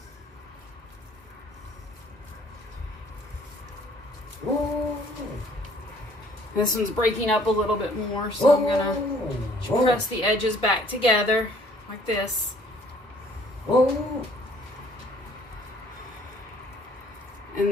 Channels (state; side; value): normal; both; correlation 0.58